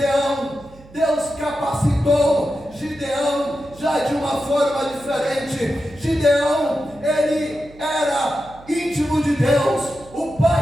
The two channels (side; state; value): right; noise; hum, 22 dB below the sound